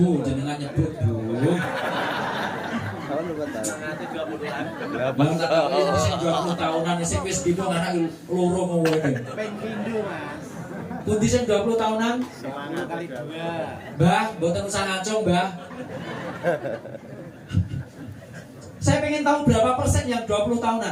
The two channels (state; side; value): identical; both; correlation 1.00